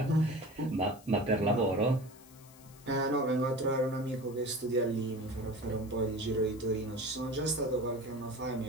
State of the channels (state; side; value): noise; left; hiss, 23 dB below the sound